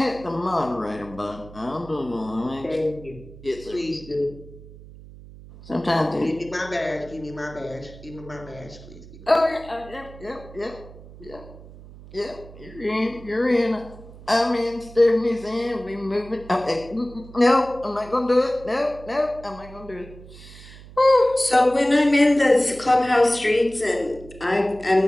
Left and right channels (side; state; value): right; noise; hum, 18 dB below the sound